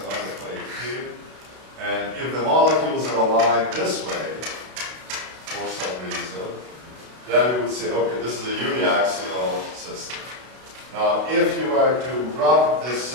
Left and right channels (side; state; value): left; late; 32 ms